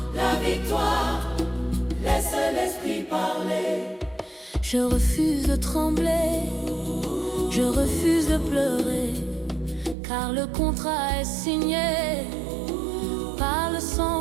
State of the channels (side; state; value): left; drops out; at 10.0 s